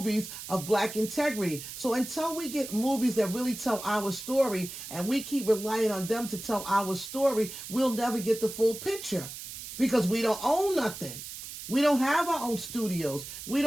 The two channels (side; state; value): right; noise; hiss, 10 dB below the sound